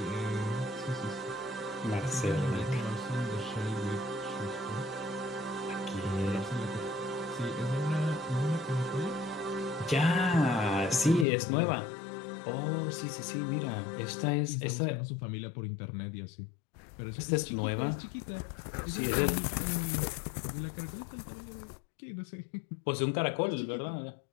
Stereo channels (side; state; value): right; drops out; at 11.2 s